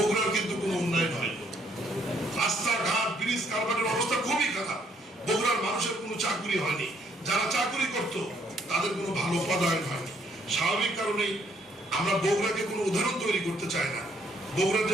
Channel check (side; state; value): both; normal; correlation 0.68